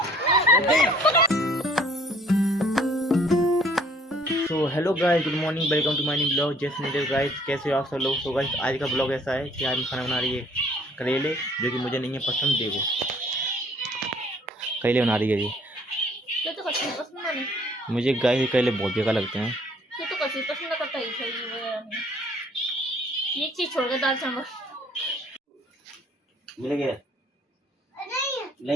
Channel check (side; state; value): both; normal; correlation 0.58